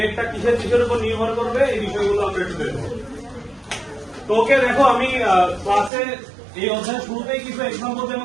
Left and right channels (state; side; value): drops out; left; at 5.9 s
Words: কিসের কিসের উপর নির্ভর করবে, এই বিষয়গুলো আমরা একটু দেখবো। তো ওকে দেখো, আমি ক্লাসে এই অধ্যায়ের শুরুতেই কিছু এক্সাম্পল